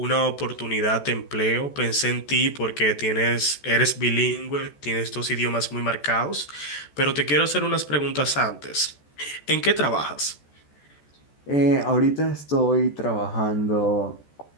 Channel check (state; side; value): late; right; 14 ms